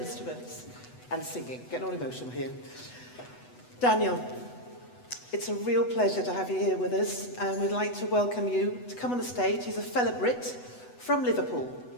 and singing. Getting all emotional here. Daniel, it's a real pleasure to have you here with us, and we'd like to welcome you to come on the stage. He's a fellow Brit from Liverpool,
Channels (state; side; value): late; right; 8.1 ms